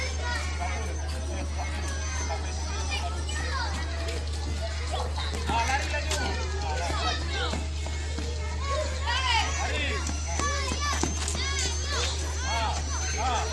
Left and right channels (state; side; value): identical; both; correlation 1.00